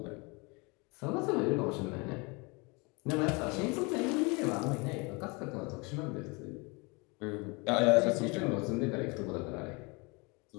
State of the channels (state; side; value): quieter; right; 28.6 dB